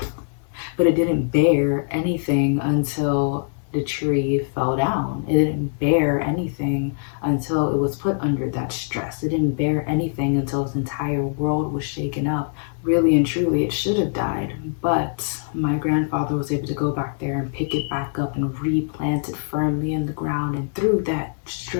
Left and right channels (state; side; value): silent; right; digital silence